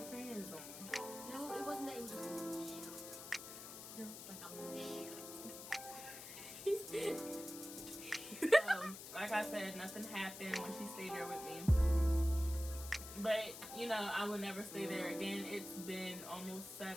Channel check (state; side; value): noise; left; hiss, 11 dB below the sound